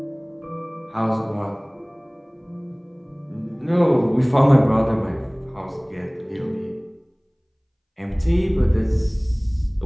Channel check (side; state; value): both; identical; correlation 1.00